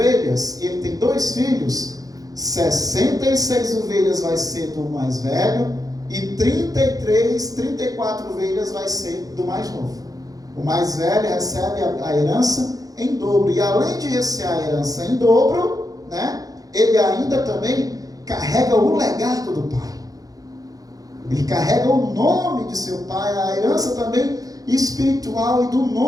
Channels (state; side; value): late; left; 0.17 ms